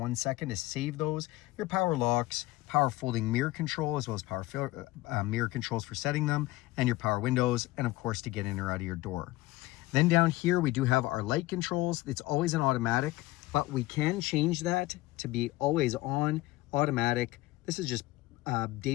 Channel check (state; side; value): quieter; right; 18.8 dB